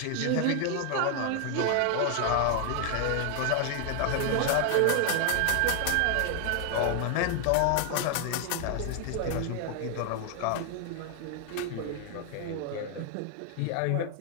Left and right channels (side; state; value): both; different; correlation 0.00